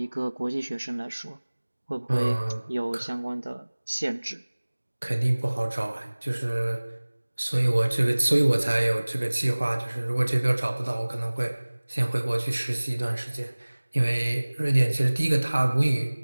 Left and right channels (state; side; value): inverted; both; correlation -1.00